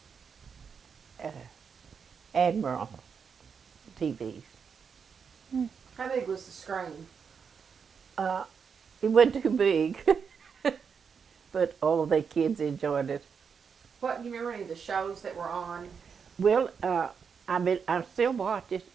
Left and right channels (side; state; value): left; quieter; 6.3 dB